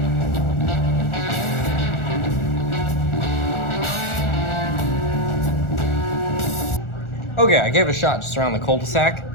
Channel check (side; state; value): right; late; 1.4 ms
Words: Okay, I gave it a shot just around the cul-de-sac.